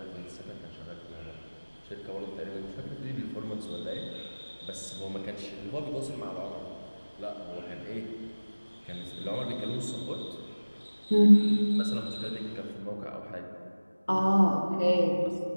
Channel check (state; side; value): inverted; both; correlation -1.00